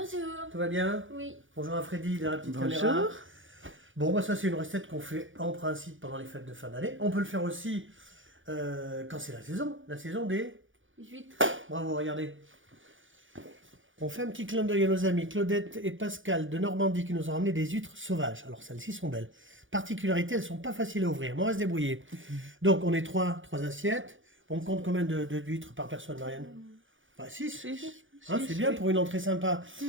Tout va bien? Oui. Bonjour à Freddy de la petite Bonjour. caméra. Bon, bah ça c'est une recette qu'on fait en principe pendant les fêtes de fin d'année. On peut le faire aussi quand c'est la saison des... Huîtres. Bravo, regardez. On fait un petit clin d'œil à nos amis Claudette et Pascal de Normandie qui nous ont ramené des huîtres sauvages. Alors celles-ci sont belles. Particularité, elles sont pas faciles à ouvrir, mais on va se débrouiller. Donc on est trois assiettes. On compte combien d'huîtres par personne, Marianne? Bah 6. Hein, c'est bien pour une entrée sympa.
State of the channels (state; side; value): late; left; 0.57 ms